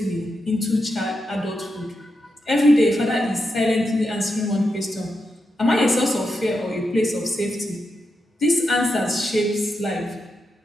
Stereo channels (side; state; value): both; normal; correlation 0.86